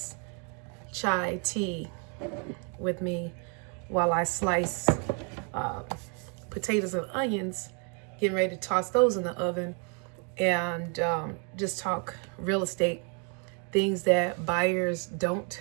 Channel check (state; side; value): quieter; left; 38.0 dB